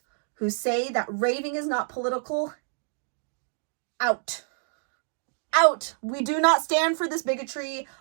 who say that raving is not political, out. Out. We do not stand for this bigotry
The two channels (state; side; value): silent; left; digital silence